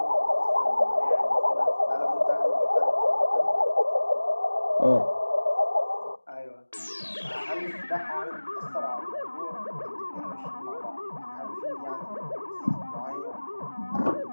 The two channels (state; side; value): inverted; both; correlation -1.00